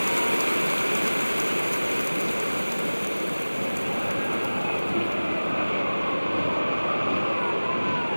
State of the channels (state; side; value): inverted; both; correlation -1.00